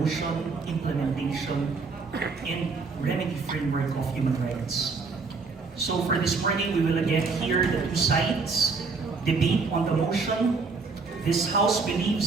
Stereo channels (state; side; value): quieter; left; 4.5 dB